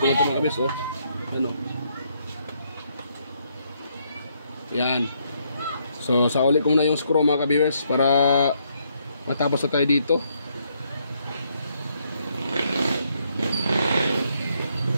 ito mga kabis, oh. Yan, oh. Yan. So, sauli ko muna yung screw mga kabis para matapos na tayo dito.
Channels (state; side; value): inverted; both; correlation -0.74